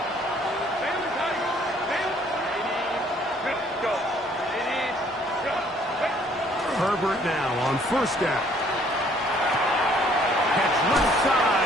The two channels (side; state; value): both; normal; correlation 0.61